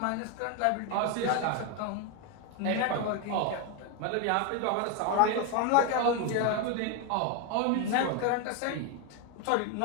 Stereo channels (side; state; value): both; different; correlation 0.02